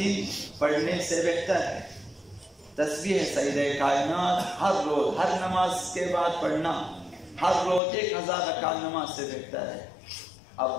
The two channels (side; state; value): right; drops out; at 7.8 s